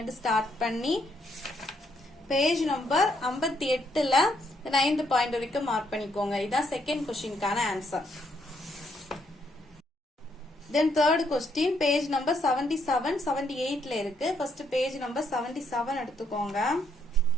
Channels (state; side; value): normal; both; correlation 0.74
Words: ஸ்டார்ட் பண்ணி பேஜ் நம்பர் 58ல 9th பாயிண்ட் வரைக்கும் மார்க் பண்ணிக்கோங்க. இதான் செகண்ட் கொஸ்டினுக்கான answer. Then third question page number 77 78ல இருக்கு. ஃபர்ஸ்ட் பேஜ் நம்பர் 77 எடுத்துக்கோங்க.